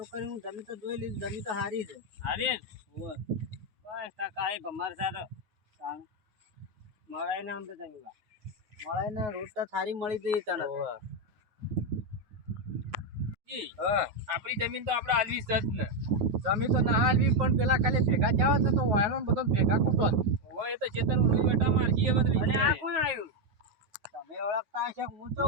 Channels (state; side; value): late; left; 9.4 ms